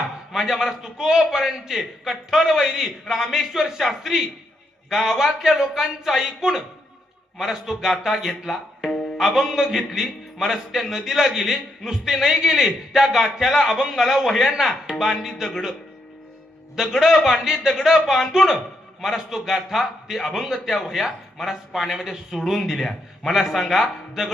माझ्या मला तुकोबारांचे कठ्ठर वैरी रामेश्वर शास्त्री गावातल्या लोकांचं ऐकून महाराज तो गाथा घेतला, अभंग घेतली, महाराज त्या नदीला गेले, नुसते नाही गेले, त्या गाथ्याला अभंगाला वह्यांना बांधली दगड बांधली, दगड बांधून महाराज तो गाथा ते अभंग त्या वह्या महाराज पाण्यामध्ये सोडून दिल्या. मला सांगा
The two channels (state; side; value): normal; both; correlation 0.79